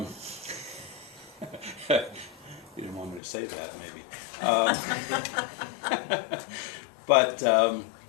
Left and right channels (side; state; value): right; drops out; at 3.2 s